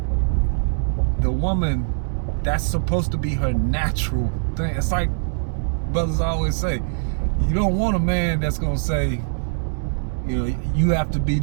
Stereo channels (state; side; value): silent; left; digital silence